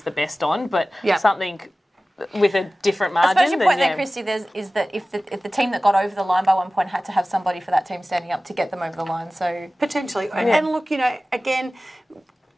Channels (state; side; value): normal; both; correlation 0.97